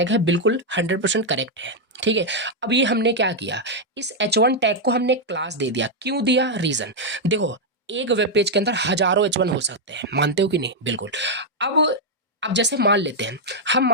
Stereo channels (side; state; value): both; normal; correlation -0.01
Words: है, बिल्कुल 100% करेक्ट है, ठीक है। अब ये हमने क्या किया, इस H1 टैग को हमने क्लास दे दिया। क्यों दिया, रीजन देखो, एक वेब पेज के अंदर हजारों H1 हो सकते हैं, मानते हो कि नहीं, बिल्कुल। अब जैसे मान लेते हैं, हम